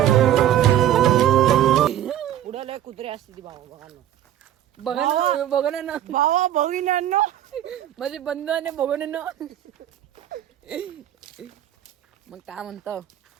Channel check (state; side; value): quieter; left; 11.6 dB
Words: पुढे लय कुत्रे असते ती भावा बघा ना. बघा ना भावा बघिनांनो माझे बंधू आणि बघून ना मग काय म्हणतो